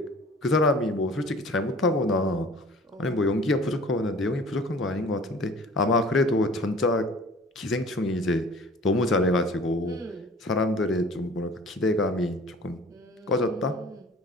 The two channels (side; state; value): both; normal; correlation 0.47